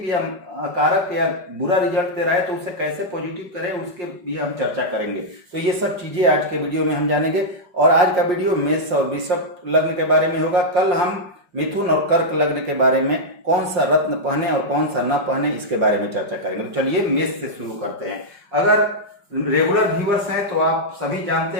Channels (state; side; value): late; left; 5.6 ms